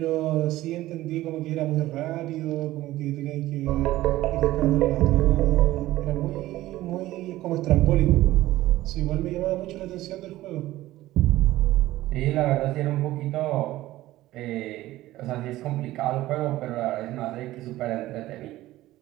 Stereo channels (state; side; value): quieter; left; 16.1 dB